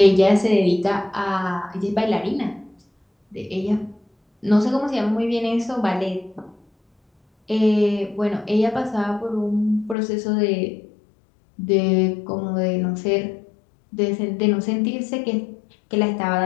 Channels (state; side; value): drops out; right; at 10.0 s